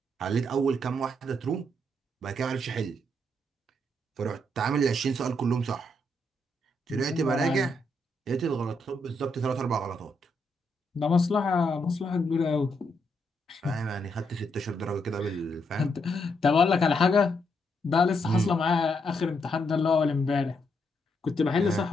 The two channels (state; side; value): normal; both; correlation 0.78